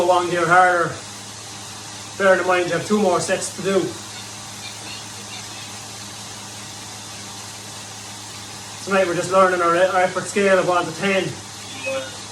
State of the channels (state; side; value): identical; both; correlation 1.00